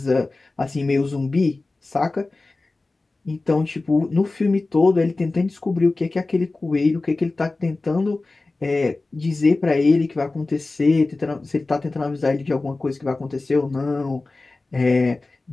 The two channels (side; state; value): right; quieter; 3.3 dB